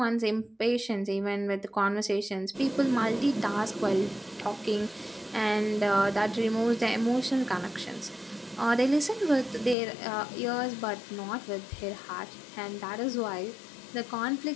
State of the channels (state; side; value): drops out; right; at 9.8 s